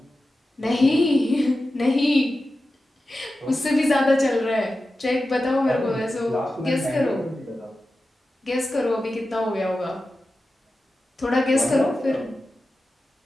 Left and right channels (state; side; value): normal; both; correlation 0.93